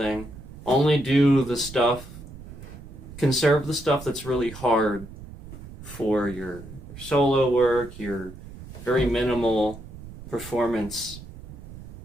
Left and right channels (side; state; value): right; noise; rumble, 15 dB below the sound